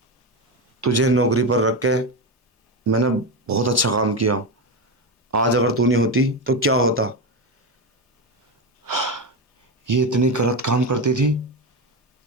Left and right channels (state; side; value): normal; both; correlation 0.14